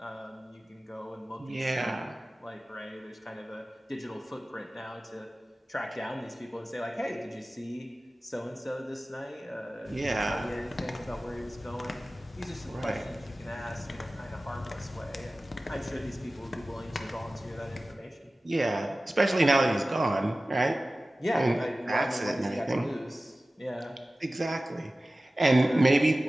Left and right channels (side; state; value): both; normal; correlation 0.96